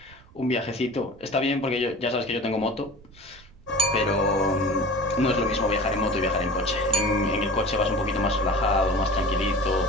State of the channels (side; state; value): right; noise; rumble, 24 dB below the sound